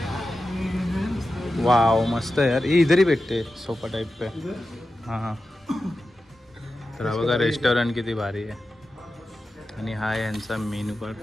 वाव, मस्त आहे यार. ये इधर ही भेटते सोफा टाइप पे. हां, तर हा बघा रेस्टॉरंट किती भारी आहे. आणि हा आहे यांचा मेन्यू कार्ड.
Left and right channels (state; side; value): normal; both; correlation 0.92